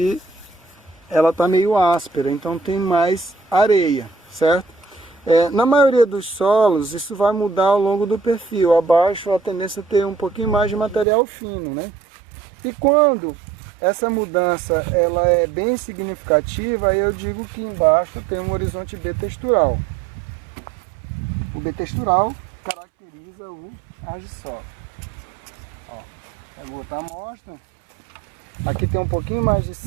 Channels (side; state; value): left; drops out; at 11.1 s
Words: ela está meio áspera, então tem mais areia, certo? Na maioria dos solos, isso vai mudar ao longo do perfil. Abaixo, a tendência é ter um pouquinho mais de material fino, né? E quando essa mudança ela é bem significativa, aí eu digo que embaixo tem um horizonte B textural. O B textural caracteriza o argissol. Ó, pegou outra amostra. Aqui tem um pouquinho mais de